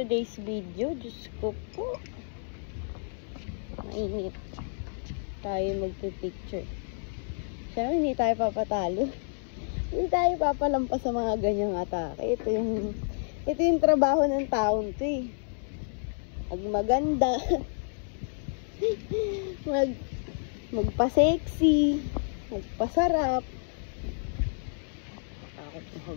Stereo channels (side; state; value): right; silent; digital silence